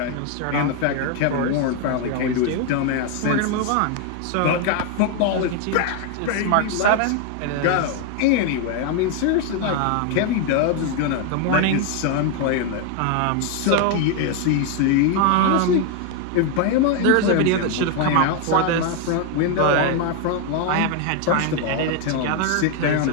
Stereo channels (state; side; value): different; both; correlation 0.01